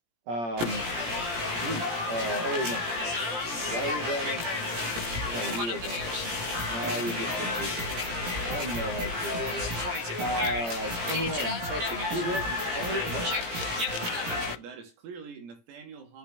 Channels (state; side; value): late; left; 17 ms